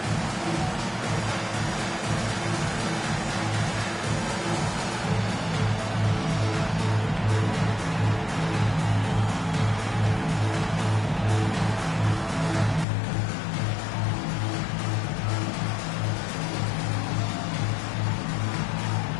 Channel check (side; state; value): right; drops out; at 12.9 s